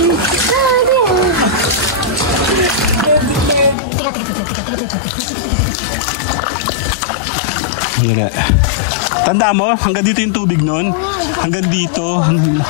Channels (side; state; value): right; drops out; at 3.8 s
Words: Tanda mo, hanggang dito yung tubig nun. Hanggang